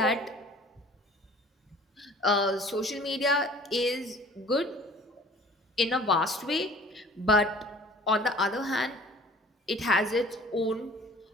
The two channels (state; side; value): normal; both; correlation 0.49